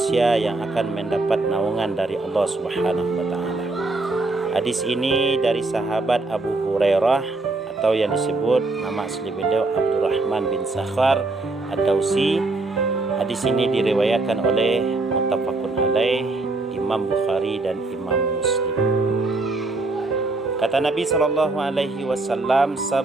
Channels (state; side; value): quieter; left; 3.2 dB